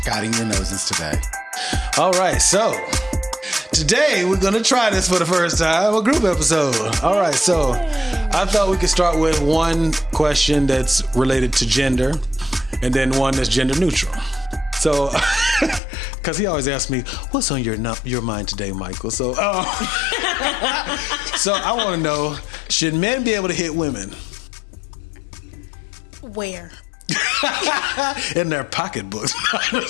Guiding your noses today. All right, so today we're going to try this for the first time, a group episode. All right, so I thought we could start with one question that's related to gender and then one that's gender neutral. So, because he always asks me, what's on your mind today, Michael? So, so I want to know, should men be able to hit women? Where? In their pocketbooks.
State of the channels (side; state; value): right; drops out; at 15.8 s